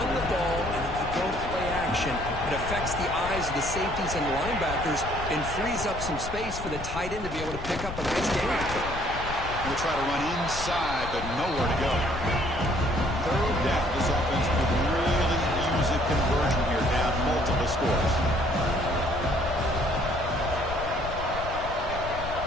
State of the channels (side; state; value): left; noise; rumble, 9 dB below the sound